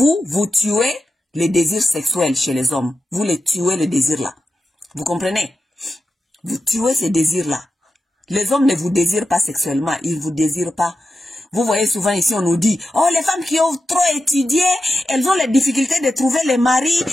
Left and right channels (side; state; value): both; normal; correlation 0.90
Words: tuez les désirs sexuels chez les hommes. Vous les tuez les désirs là. Vous comprenez? Vous tuez ces désirs là. Les hommes ne vous désirent pas sexuellement, ils vous désirent pas. Vous voyez souvent ici, on nous dit, oh, les femmes qui ont trop étudié, elles ont les difficultés de trouver les maris,